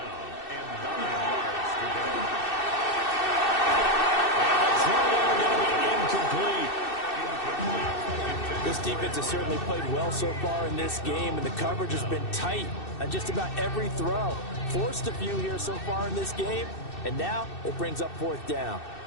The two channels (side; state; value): right; late; 2.6 ms